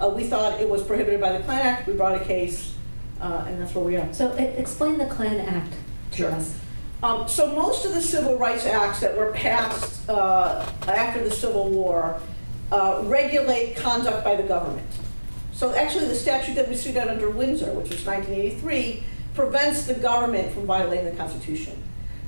We thought it was prohibited by the Klan Act. We brought a case, and that's where we are. So explain the Klan Act to us. So most of the civil rights acts that were passed after the Civil War regulate conduct by the government. So actually the statute that we sued out under Windsor, which was 1983, prevents the government from violating the Constitution.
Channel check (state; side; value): inverted; both; correlation -1.00